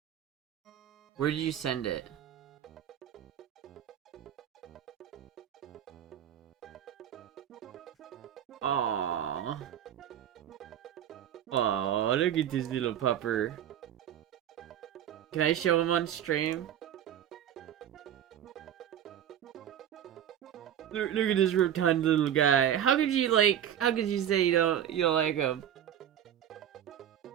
Where did you send it? Aww. Aww, look at this little pupper. Can I show him on stream? Look at this rotund little guy. How could you say you don't like him?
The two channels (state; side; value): quieter; left; 10.2 dB